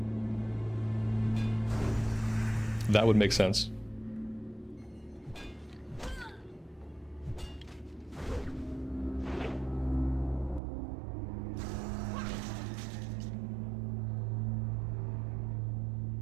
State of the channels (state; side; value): drops out; left; at 10.6 s